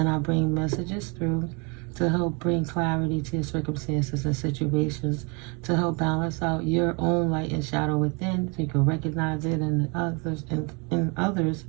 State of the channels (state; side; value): quieter; left; 31.8 dB